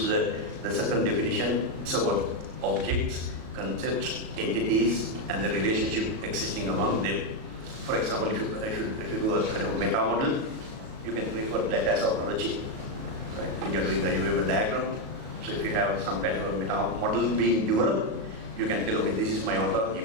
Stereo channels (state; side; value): late; left; 37 ms